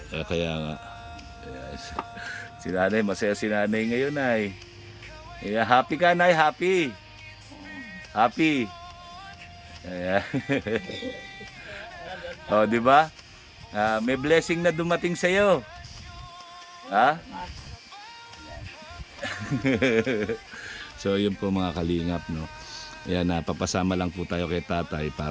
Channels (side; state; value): both; identical; correlation 1.00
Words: Kaya nga. Si Nanay, masaya si Nanay ngayon ay. Happy ka, Nay, happy. Happy. Ayan. Di ba? May blessing na dumating sa iyo. Ha? So, yun po mga kalingap, no. Ayan, papasama lang po tayo kay tatay